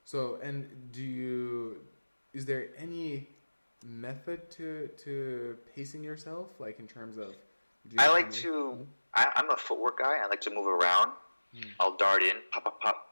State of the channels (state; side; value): inverted; both; correlation -1.00